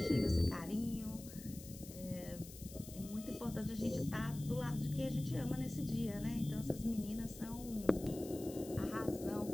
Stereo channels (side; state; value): left; noise; hiss, 15 dB below the sound